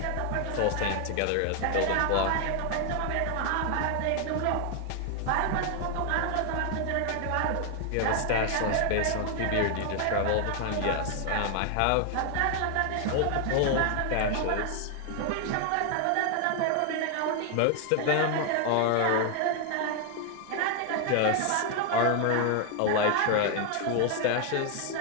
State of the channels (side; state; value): both; different; correlation 0.00